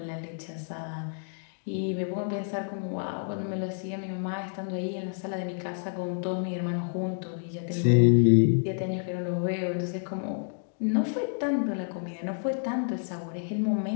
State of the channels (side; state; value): right; silent; digital silence